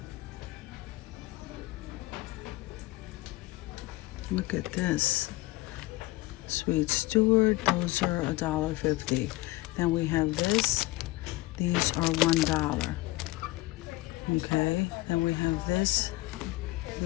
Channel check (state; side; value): quieter; right; 19.3 dB